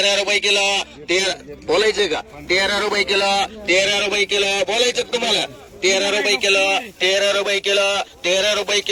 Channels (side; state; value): both; identical; correlation 1.00